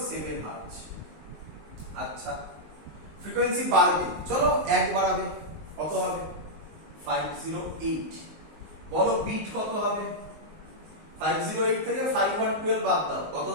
হার্টজ। আচ্ছা, ফ্রিকোয়েন্সি বাড়বে, চলো 1 বাড়াবে, কত হবে? 508। বলো বিট কত হবে? 508 থেকে 512 বাদ দাও, কত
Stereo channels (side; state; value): left; late; 19 ms